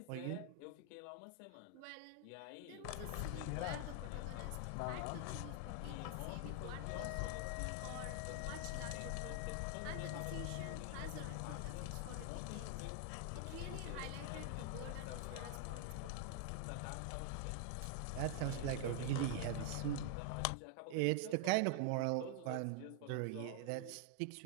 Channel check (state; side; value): different; both; correlation 0.00